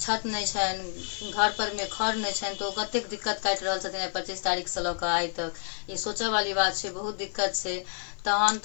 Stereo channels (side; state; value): right; silent; digital silence